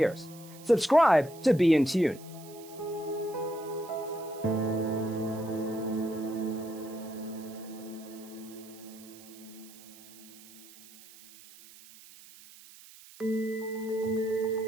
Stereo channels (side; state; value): right; noise; hiss, 20 dB below the sound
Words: Subscribe to be in tune.